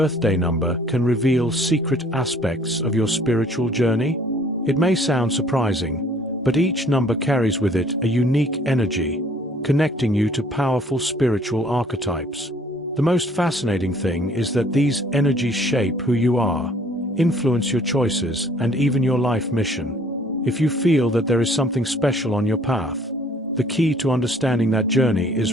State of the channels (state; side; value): normal; both; correlation 0.57